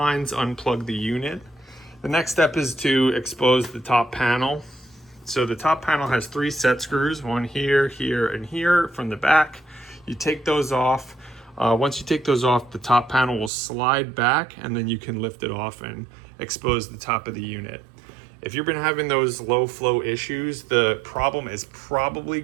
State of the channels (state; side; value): drops out; left; at 13.5 s